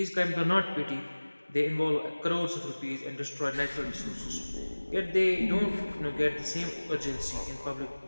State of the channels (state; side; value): inverted; both; correlation -1.00